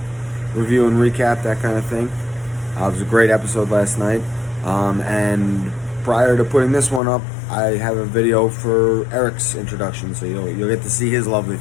review and recap, that kind of thing. It was a great episode last night. And prior to putting this one up, I have a video for Eric's introduction, so you'll get to see his lovely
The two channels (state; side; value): drops out; right; at 7.0 s